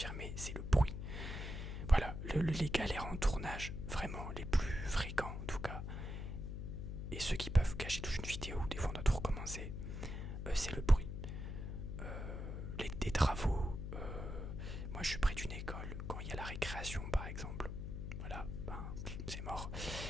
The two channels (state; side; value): noise; left; hum, 5 dB below the sound